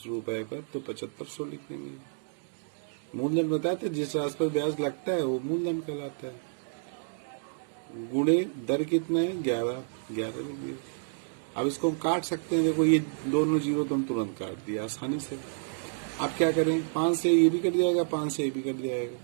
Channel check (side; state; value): left; silent; digital silence